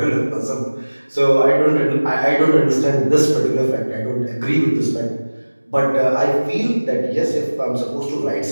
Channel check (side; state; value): both; inverted; correlation -1.00